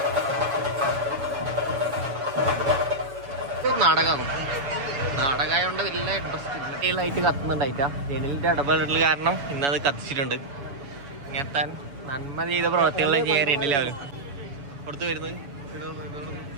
നാടകമായോണ്ട് വലിയ ഇൻട്രസ്റ്റ് ആയിട്ട് കത്തുന്നുണ്ടായിട്ടാ. ജനലിന്റെ ഇടപെടൽ കാരണം ഇന്നത് കത്തിച്ചിട്ടുണ്ട്. ഇങ്ങനത്തെ നന്മ ചെയ്ത പ്രവർത്തികളെ ചെയ്യാൻ രണ്ടിലാവരും പുറത്ത് വരുന്നത്.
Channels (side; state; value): left; late; 7.1 ms